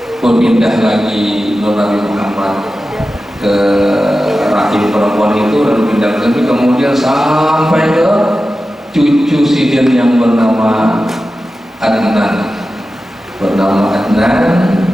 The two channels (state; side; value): normal; both; correlation 0.93